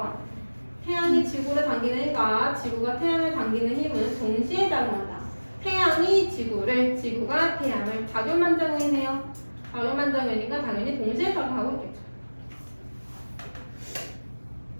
태양이 지구를 당기니까 지구가 태양을 당기는 힘은 동시에 작용한다. 태양이 지구를, 지구가 태양을. 작용 반작용이네요. 작용 반작용이니까 당연히 동시에 작용하고 있겠죠.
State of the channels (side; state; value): both; inverted; correlation -1.00